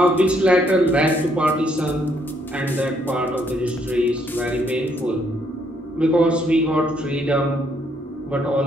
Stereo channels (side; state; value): both; normal; correlation 0.70